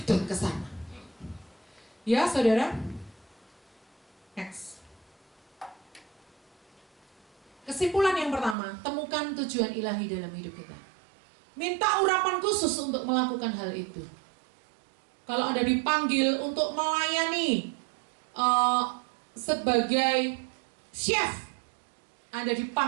ke sana. Ya, saudara. Next. Kesimpulan yang pertama, temukan tujuan ilahi dalam hidup kita. Minta urapan khusus untuk melakukan hal itu. Kalau Anda dipanggil untuk melayani sebagai chef, Anda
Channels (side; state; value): left; drops out; at 8.6 s